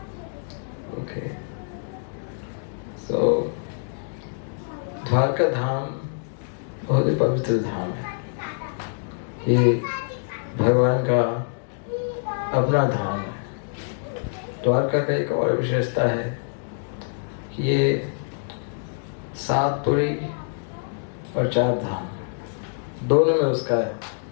ओके। सो द्वारका धाम बहुत ही पवित्र धाम है। ये भगवान का अपना धाम है। द्वारका का एक और विशेषता है कि ये 7 पुरी और 4 धाम दोनों में उसका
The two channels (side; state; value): right; silent; digital silence